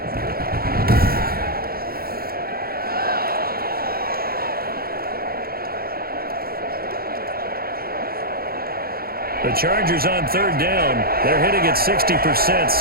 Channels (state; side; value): late; left; 0.44 ms